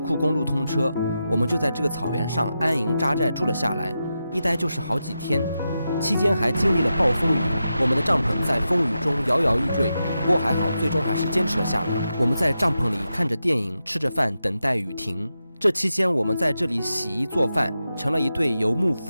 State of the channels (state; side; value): inverted; both; correlation -0.89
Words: 公路通车，我们就在这个草原上安营扎寨住了下来，一待就是好几天。期间还经历了暴风雨，我们的帐篷在风雨中摇摇欲坠，不过还好，最终还是坚持了下来。我们在帐篷里看着电影，吃着饭，等待雨停。这期间，我们在这里洗衣做饭，成了一对游牧